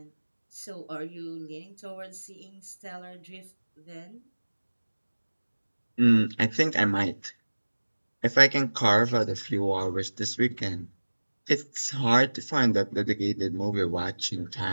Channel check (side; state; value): both; inverted; correlation -1.00